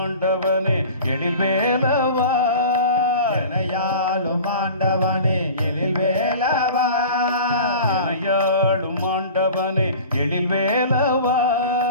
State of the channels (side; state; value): both; inverted; correlation -0.39